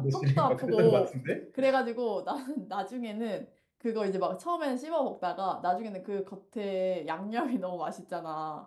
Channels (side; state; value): both; identical; correlation 1.00